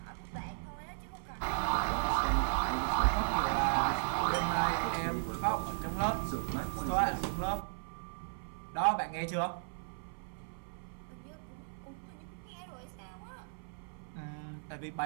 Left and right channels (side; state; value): left; silent; 54 dB below the other